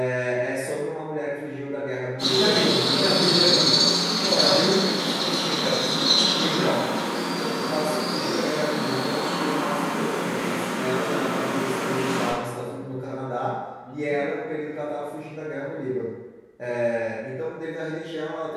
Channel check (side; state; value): both; identical; correlation 1.00